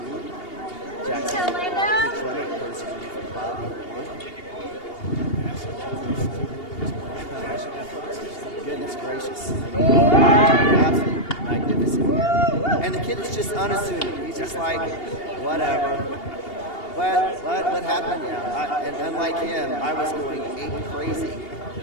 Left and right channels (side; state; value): right; late; 2.8 ms